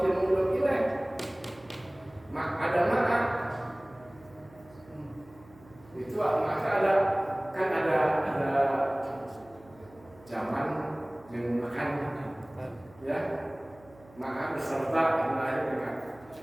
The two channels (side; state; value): right; noise; hum, 25 dB below the sound